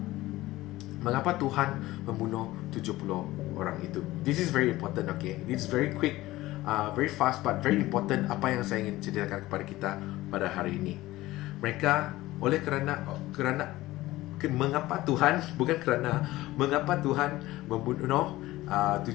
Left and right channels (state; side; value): quieter; right; 17.5 dB